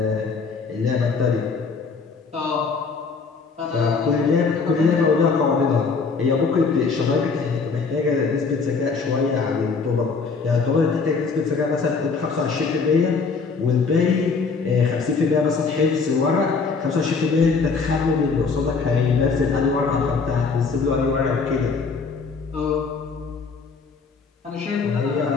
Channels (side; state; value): right; quieter; 4.8 dB